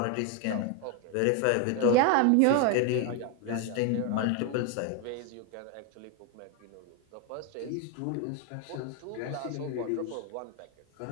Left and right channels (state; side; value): different; both; correlation 0.01